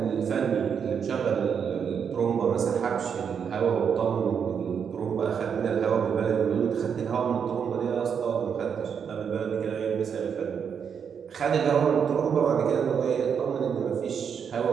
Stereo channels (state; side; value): quieter; left; 7.2 dB